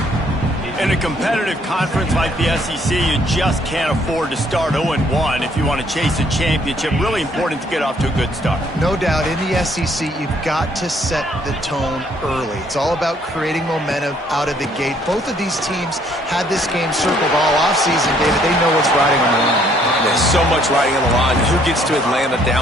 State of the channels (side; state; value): both; normal; correlation 0.65